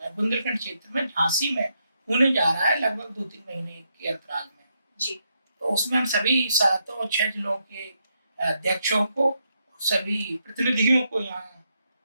बुंदेलखंड क्षेत्र में झांसी में होने जा रहा है लगभग 2-3 महीने के अंतराल में। जी। तो उसमें हम सभी 7 और 6 जिलों के अध्यक्षों को, सभी प्रतिनिधियों को यहाँ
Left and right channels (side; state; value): both; inverted; correlation -0.80